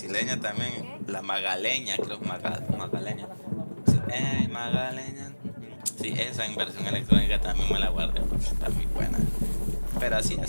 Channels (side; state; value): both; inverted; correlation -1.00